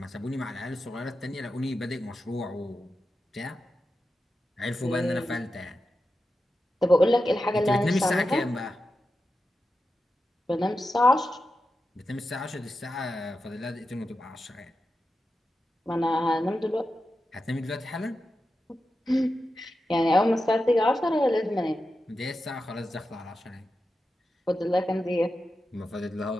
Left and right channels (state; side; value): normal; both; correlation 0.90